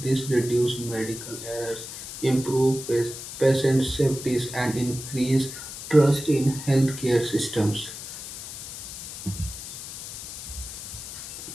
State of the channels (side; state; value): left; noise; hiss, 10 dB below the sound